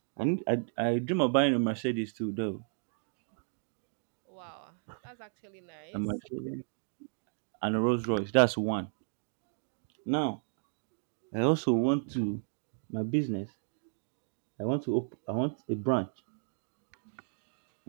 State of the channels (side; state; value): left; silent; digital silence